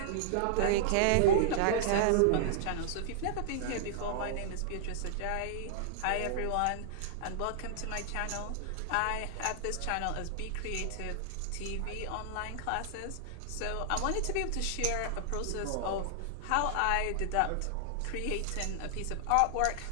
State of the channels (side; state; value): both; different; correlation -0.01